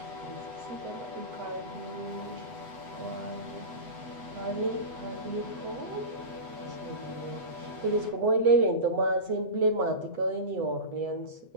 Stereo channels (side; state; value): left; late; 8.0 ms